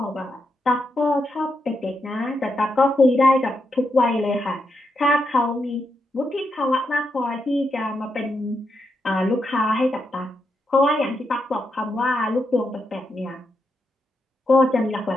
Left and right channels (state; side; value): normal; both; correlation 0.83